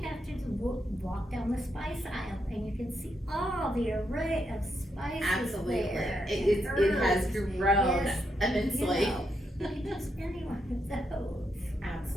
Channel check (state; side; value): normal; both; correlation 0.80